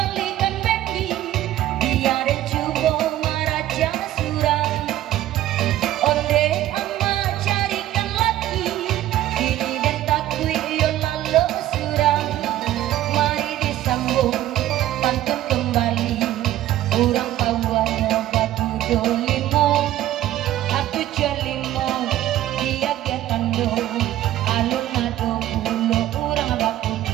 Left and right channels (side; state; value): left; quieter; 13.6 dB